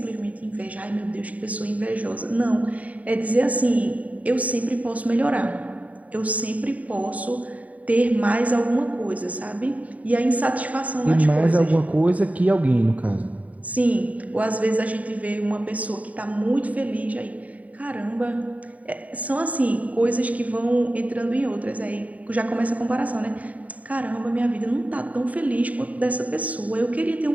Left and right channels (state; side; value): late; left; 0.070 ms